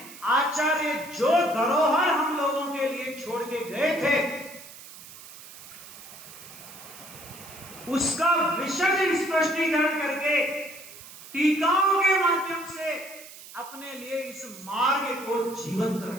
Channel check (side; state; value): right; noise; hiss, 16 dB below the sound